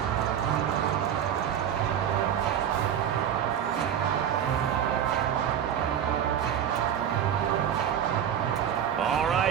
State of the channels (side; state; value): left; quieter; 9.4 dB